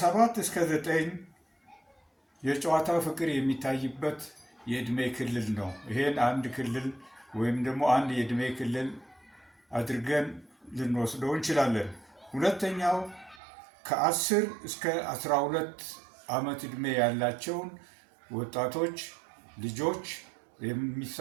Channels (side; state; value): left; drops out; at 13.4 s